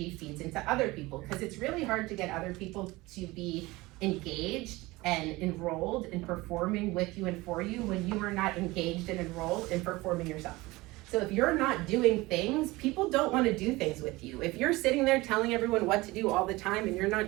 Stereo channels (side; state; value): left; quieter; 21.0 dB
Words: feeds into other people? Because it's really hard to get other people to be engaged and enrolled in performing with you and for you when you are not engaged and enrolled in performing yourself. So if you're not doing things, people don't want to do things with you. If you're sitting there telling everyone what to do all the time and you're not